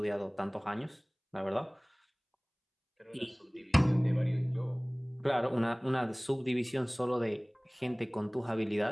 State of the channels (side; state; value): both; identical; correlation 1.00